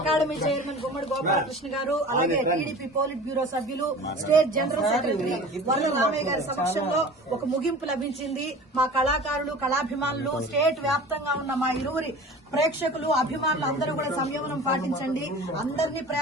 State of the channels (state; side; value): normal; both; correlation 0.40